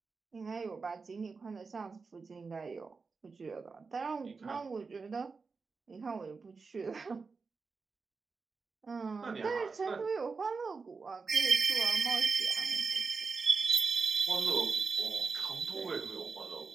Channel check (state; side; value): quieter; left; 4.6 dB